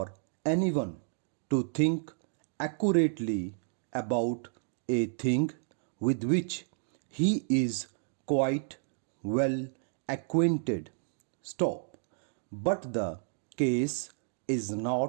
anyone to think accurately about a thing with which he is quite well acquainted. Stop. But the case is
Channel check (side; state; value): left; silent; digital silence